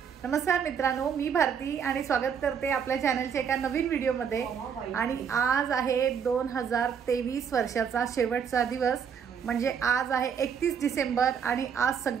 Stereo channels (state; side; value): quieter; left; 7.3 dB